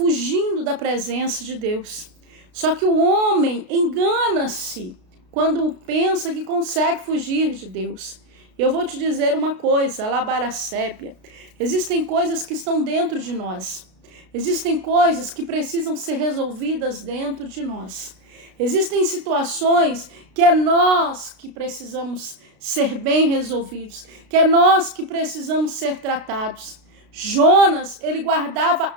da presença de Deus. Só que o homem engana-se quando pensa que consegue fugir de Deus. Eu vou te dizer uma coisa, alabaracépia. Existem coisas que estão dentro de nós. Existem coisas que precisam ser resolvidas dentro de nós. Existem situações que é nós que precisamos ser bem resolvidos, que é nós que precisamos ser tratados. Jonas, ele guardava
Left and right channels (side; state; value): left; late; 33 ms